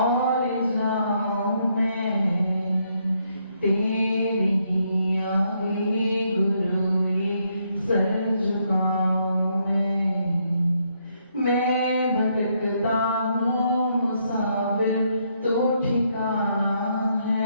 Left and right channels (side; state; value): both; inverted; correlation -0.74